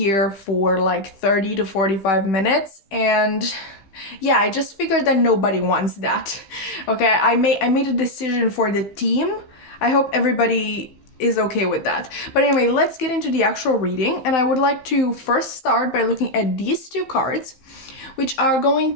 for like 30 to 45 minutes. And yeah, I just figured that nobody wants that. Okay, I made a decision for the team. I hope everybody is okay with that. But anyway, let's get into the actual reading. And I would like to first start by looking at these two cards, which are going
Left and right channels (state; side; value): late; right; 15 ms